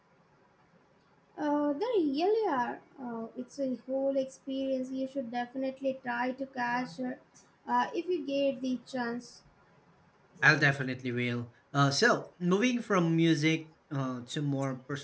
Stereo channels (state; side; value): identical; both; correlation 1.00